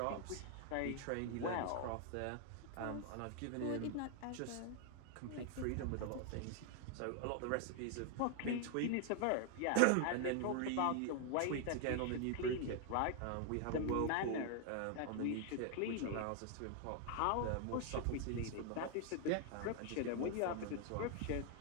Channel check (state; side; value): different; both; correlation 0.00